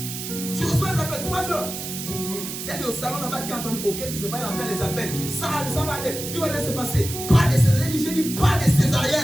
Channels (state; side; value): noise; right; hiss, 7 dB below the sound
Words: Tu reçois les appels 3 heures. C'est au salon là-bas qui entend ok, tu sais pas, il entend les appels. Ça va aller, tout va bien se passer. Pas de césarienne, j'ai dit pas de